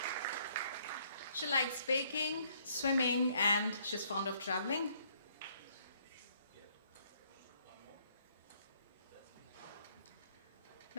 She likes baking, swimming, and she's fond of traveling.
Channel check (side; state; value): both; inverted; correlation -0.66